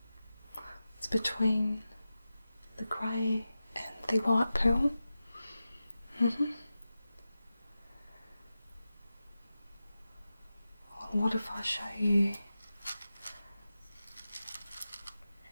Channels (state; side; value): inverted; both; correlation -0.93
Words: It's between the grey and the white pearl. Well, what if I show you